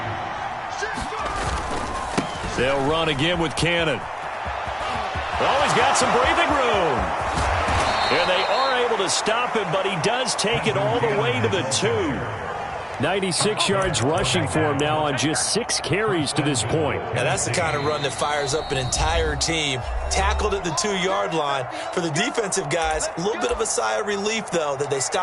They'll run again with Cannon. Oh, he's got some breathing room. And they are able to stop him, but he does take it all the way to the 2. 96 yards rushing for him now on just 6 carries to this point. Yeah, that's the kind of run that fires up an entire team. Tackled at the 2-yard line. For the defensive guys, a little bit of a sigh of relief, though, that they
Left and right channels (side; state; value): both; identical; correlation 1.00